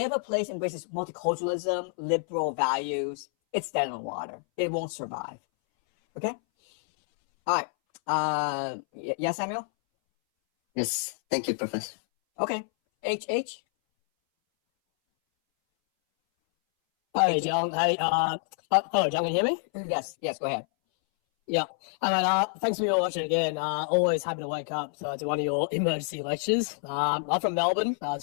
a place embraces multiculturalism, liberal values, it's dead in the water. It won't survive. Okay? All right. Yes, Samuel? Yes. Thank you, Professor. Okay. H. Hi, John. Hello, John. Can you hear me? Yes. Go ahead. Yeah. And thanks for your watching again. Always happy to wake up to one of your emergency lectures. I'm from Melbourne,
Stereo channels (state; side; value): silent; right; 59 dB below the other